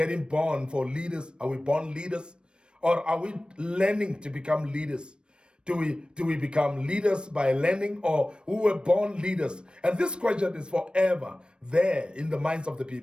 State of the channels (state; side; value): late; left; 0.055 ms